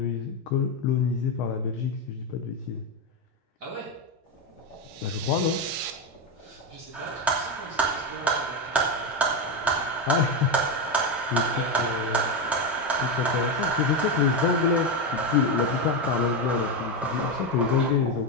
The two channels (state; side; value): normal; both; correlation 0.11